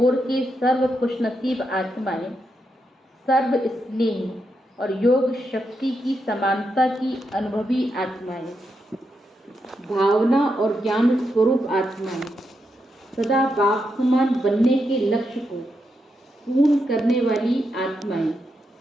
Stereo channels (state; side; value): normal; both; correlation 0.83